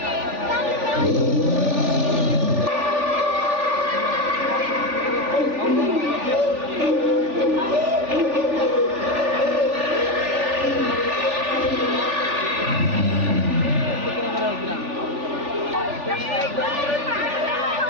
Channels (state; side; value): late; left; 3.4 ms